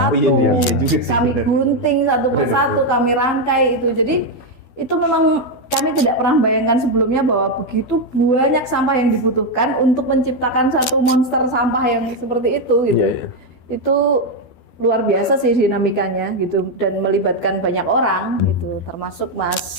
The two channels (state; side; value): late; right; 12 ms